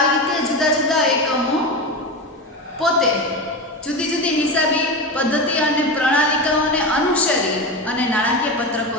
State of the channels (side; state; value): both; normal; correlation 0.21